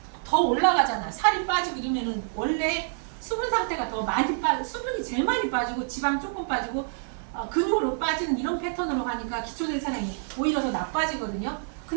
더 올라가잖아. 살이 빠지고 이러면은 원래 수분 상태가 더 많이 수분이 제일 많이 빠지고 지방 조금 빠지고 근육으로 빠지는 이런 패턴으로 가니까 기초대사량이 오히려 더 나빠지거든요.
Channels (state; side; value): silent; left; 60 dB below the other